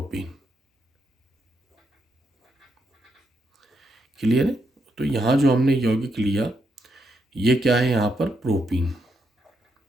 क्लियर है। तो यहाँ जो हमने यौगिक लिया ये क्या है, यहाँ पर प्रोपीन,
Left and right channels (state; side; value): normal; both; correlation 0.80